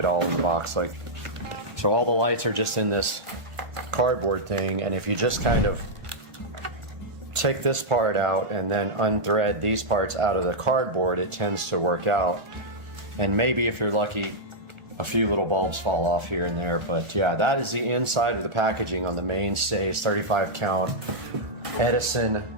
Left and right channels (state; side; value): late; left; 1.4 ms